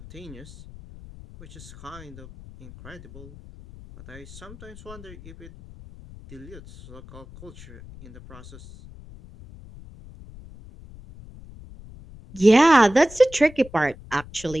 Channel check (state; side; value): noise; left; rumble, 18 dB below the sound